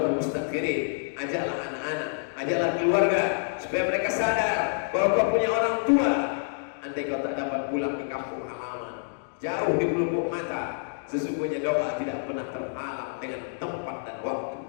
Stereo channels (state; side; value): silent; right; digital silence